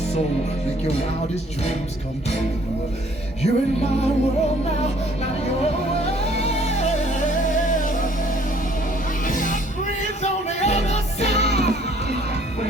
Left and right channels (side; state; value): both; normal; correlation 0.59